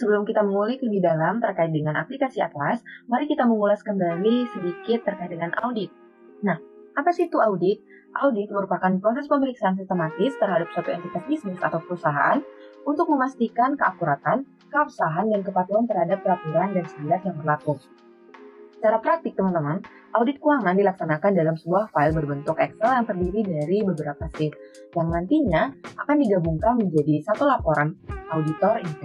kita mengulik lebih dalam terkait dengan aplikasi Atlas, mari kita mengulas kembali sedikit terkait dengan audit. Nah, apa sih itu audit? Audit merupakan proses pemeriksaan sistematis terhadap suatu entitas bisnis atau perusahaan untuk memastikan keakuratan, keabsahan, dan kepatuhan terhadap peraturan dan standar yang berlaku. Secara praktik, teman-teman, audit keuangan dilaksanakan dalam sebuah file berbentuk Excel yang terdiri dari beberapa sheet, yang nantinya akan digabungkan menjadi satu laporan auditor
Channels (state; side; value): identical; both; correlation 1.00